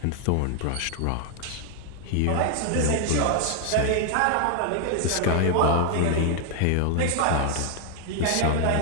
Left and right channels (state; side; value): different; both; correlation 0.00